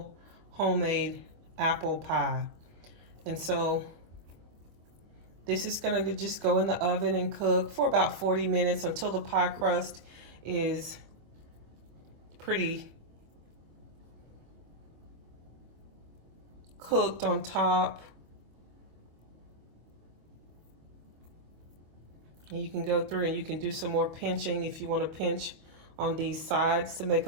homemade apple pie. And so this is gonna just go in the oven and cook for about 40 minutes until the pie crust is pretty cooked on top. And you can go through and you can do some more pinching if you want to pinch on these sides to make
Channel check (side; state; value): left; late; 25 ms